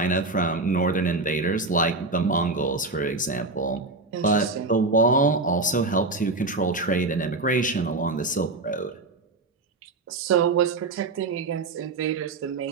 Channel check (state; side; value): quieter; left; 3.4 dB